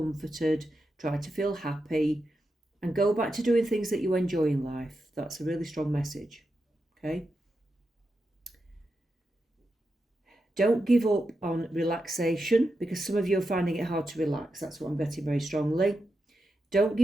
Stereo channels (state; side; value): normal; both; correlation 0.88